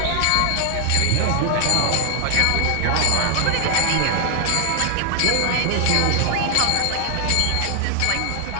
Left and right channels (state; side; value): different; both; correlation 0.00